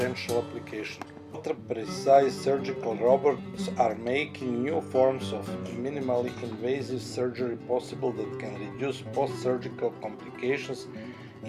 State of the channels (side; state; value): both; identical; correlation 1.00